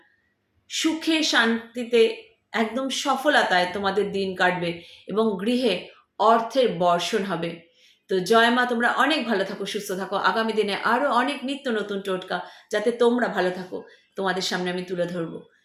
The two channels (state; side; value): identical; both; correlation 1.00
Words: সুখে শান্তিতে একদম সফলতায় তোমাদের দিন কাটবে এবং গৃহে অর্থের বর্ষণ হবে। তো জয় মা, তোমরা অনেক ভালো থাকো, সুস্থ থাকো। আগামী দিনে আরো অনেক নিত্য নতুন টোটকা যাতে তোমরা ভালো থাকো তোমাদের সামনে আমি তুলে ধরবো।